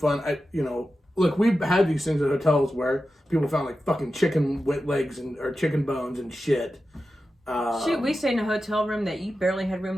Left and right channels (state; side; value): normal; both; correlation 0.92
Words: Look, we've had these things at hotels where people found like fucking chicken legs or chicken bones and shit. Shoot, we stayed in a hotel room that you barely had